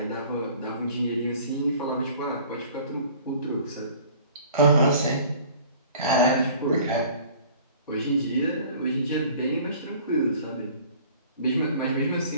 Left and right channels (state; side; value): inverted; both; correlation -0.49